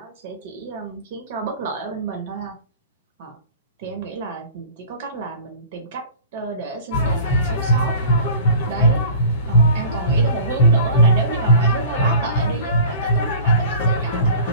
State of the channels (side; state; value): both; inverted; correlation -0.43